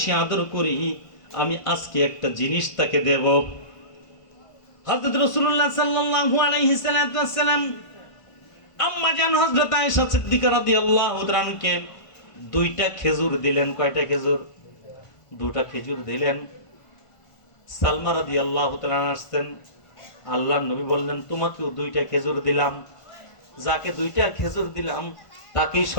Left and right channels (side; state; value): right; late; 1.5 ms